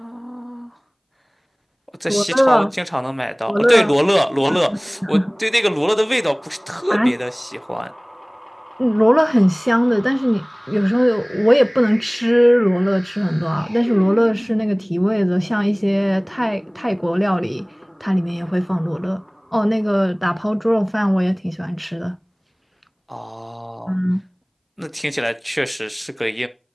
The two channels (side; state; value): both; identical; correlation 1.00